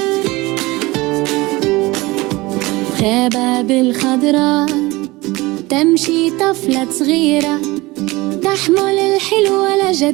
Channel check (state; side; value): quieter; left; 21.3 dB